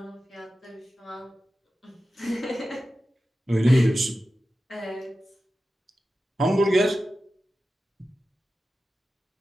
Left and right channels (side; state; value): both; normal; correlation 0.93